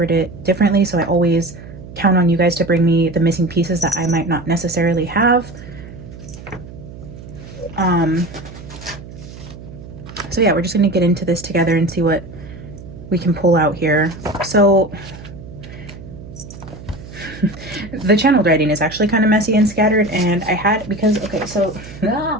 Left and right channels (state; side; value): noise; right; hum, 15 dB below the sound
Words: it differently. So I always count on you guys to bring me the missing pieces that I might not necessarily have. So yeah, we're just going to get into this together and see what we can pull out here. So the channeled writing is actually kind of messy and scattered, and I had, because, okay, so